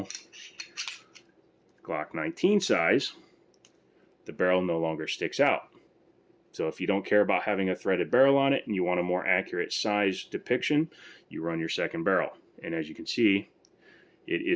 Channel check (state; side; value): identical; both; correlation 1.00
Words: Glock 19 size. The barrel no longer sticks out. So if you don't care about having a threaded barrel on it and you want a more accurate size depiction, you run your second barrel. And as you can see, it